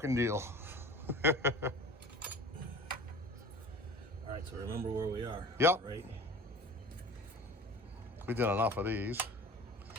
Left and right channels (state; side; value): normal; both; correlation 0.39